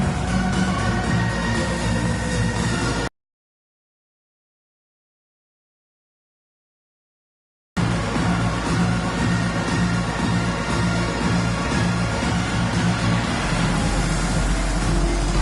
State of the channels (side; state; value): both; identical; correlation 1.00